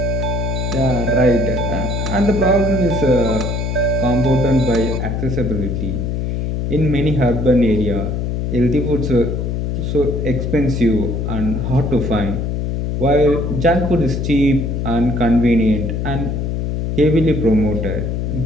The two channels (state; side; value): noise; left; hum, 1 dB below the sound